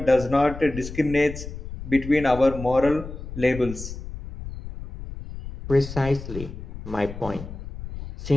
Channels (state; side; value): noise; left; rumble, 10 dB below the sound